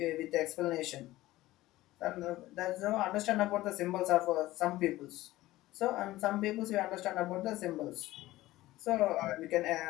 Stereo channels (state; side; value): quieter; right; 16.9 dB